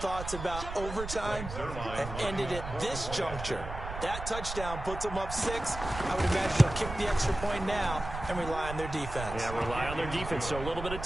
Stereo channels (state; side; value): noise; right; rumble, 8 dB below the sound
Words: about overtime have ended at this juncture. That touchdown puts them up 6. I would imagine they'll kick the extra point now and rely on their defense. Yeah, rely on their defense. So a little bit of